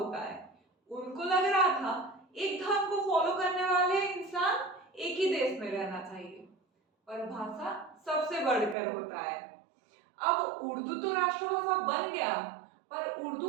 है। उनको लग रहा था एक धर्म को फॉलो करने वाले इंसान एक ही देश में रहना चाहिए, पर भाषा सबसे बढ़कर होता है। अब उर्दू तो राष्ट्रभाषा बन गया, पर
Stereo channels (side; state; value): left; drops out; at 8.8 s